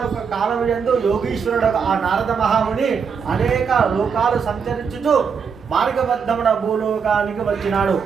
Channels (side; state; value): left; quieter; 6.3 dB